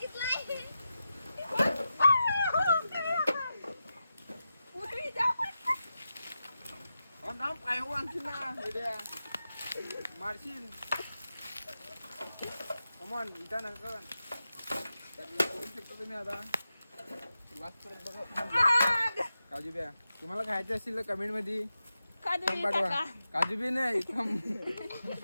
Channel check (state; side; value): inverted; both; correlation -0.90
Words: मारशील कमॉन इथं ना बघू शकता तुम्ही आता काजू बिया. तुम्हाला खायचे असतील तर कमेंट मध्ये पाठवा. काजू बी नाही